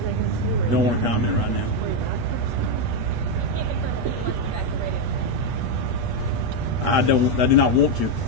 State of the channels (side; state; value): left; late; 8.3 ms